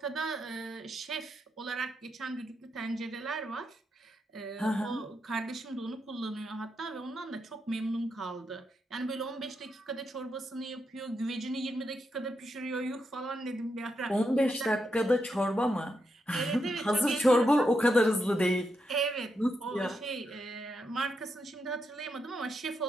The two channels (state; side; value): normal; both; correlation 0.83